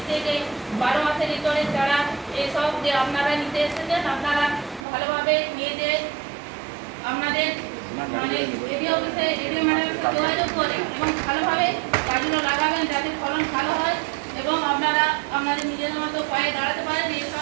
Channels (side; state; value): left; drops out; at 4.9 s